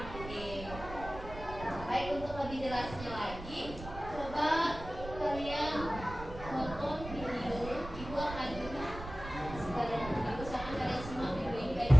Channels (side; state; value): right; noise; rumble, 11 dB below the sound